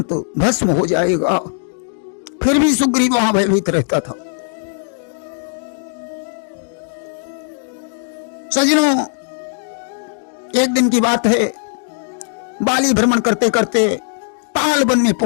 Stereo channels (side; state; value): right; silent; digital silence